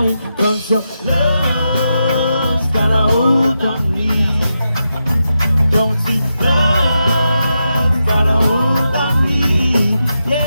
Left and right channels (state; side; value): inverted; both; correlation -0.87